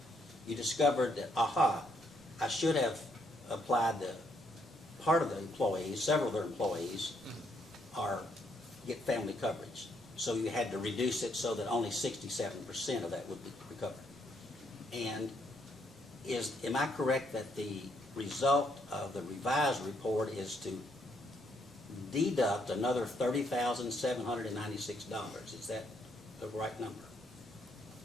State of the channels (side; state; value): both; normal; correlation 0.73